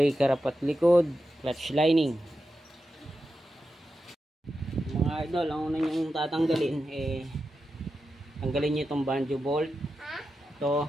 harapat likod, clutch lining. Mga idol, ang una nyong tatanggalin tanggalin nyo itong banjo bolt.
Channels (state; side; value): normal; both; correlation 0.90